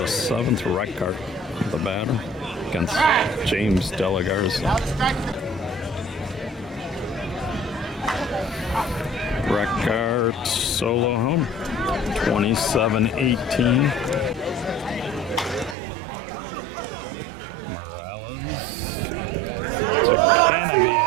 7th. Reckart, the batter, against James De La Garza. Reckart solo home, 27-18. Morales to Canopy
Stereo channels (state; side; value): drops out; left; at 15.8 s